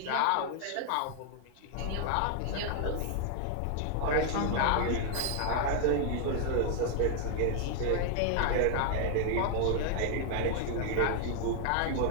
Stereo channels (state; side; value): different; both; correlation 0.00